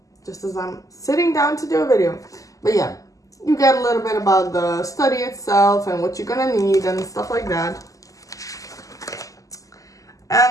just as I'm sitting down to do a video. But yeah, you get a little bit about the study itself and what you're gonna need and stuff like that.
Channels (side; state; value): right; late; 0.16 ms